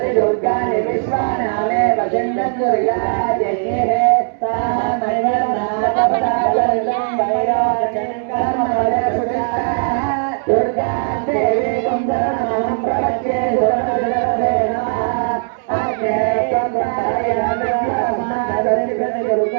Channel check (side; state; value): left; silent; 67 dB below the other